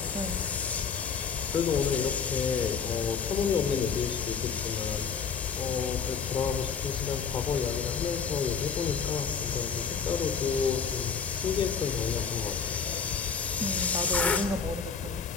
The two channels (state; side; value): quieter; right; 6.1 dB